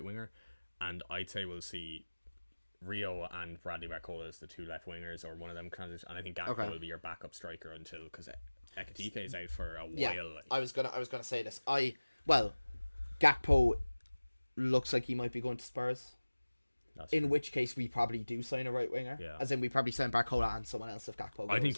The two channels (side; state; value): both; inverted; correlation -1.00